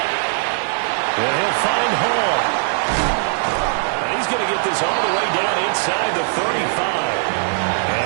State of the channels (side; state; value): left; silent; digital silence